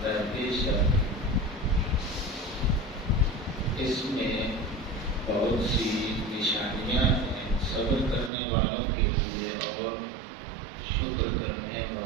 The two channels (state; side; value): drops out; left; at 8.3 s